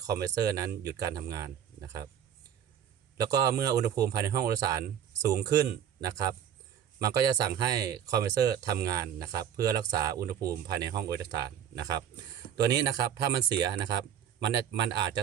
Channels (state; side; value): quieter; left; 9.2 dB